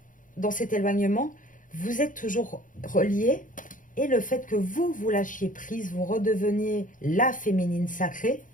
dans cet éloignement, vous êtes toujours reliés. Et le fait que vous lâchiez prise, vous redeveniez la féminine sacrée,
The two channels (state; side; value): late; right; 0.38 ms